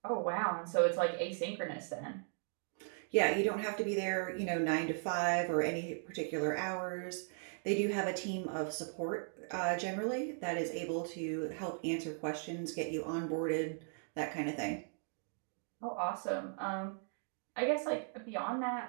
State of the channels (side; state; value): left; silent; 53 dB below the other